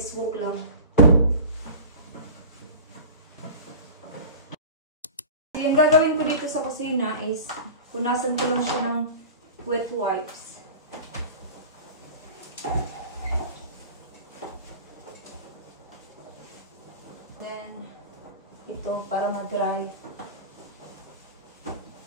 walk lang. Yung gagawin ko dito sa kusina is, punasan ko lang siya ng wet wipes. Then, ito para ma-dry.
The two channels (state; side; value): inverted; both; correlation -0.35